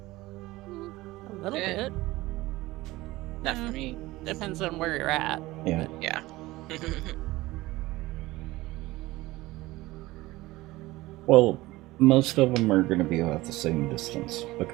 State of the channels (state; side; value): quieter; left; 18.9 dB